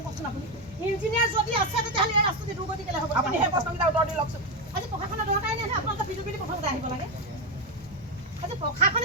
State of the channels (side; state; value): both; normal; correlation 0.09